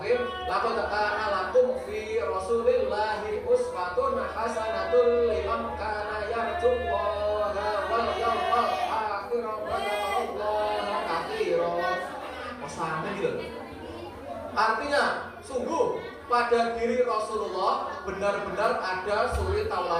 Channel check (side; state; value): both; identical; correlation 1.00